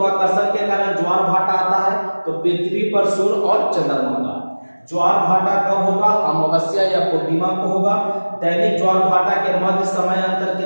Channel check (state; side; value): inverted; both; correlation -1.00